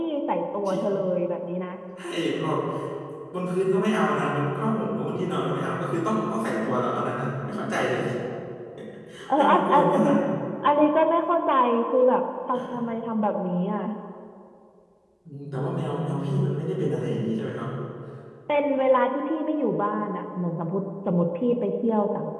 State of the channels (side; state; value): both; identical; correlation 1.00